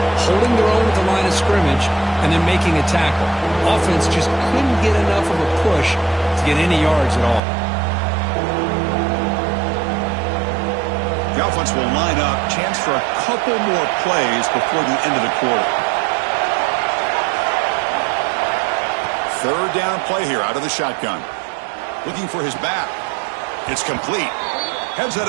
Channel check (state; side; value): drops out; left; at 7.4 s